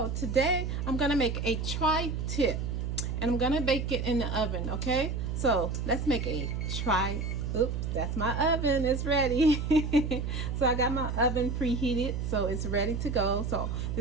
today I'm gonna make a tri-tip and I'm gonna bake it in the oven. Okay, so let's make a oops, that's my oven, it's ready. So I got my oven preheated, so it's ready to go. So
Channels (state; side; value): noise; right; hum, 2 dB below the sound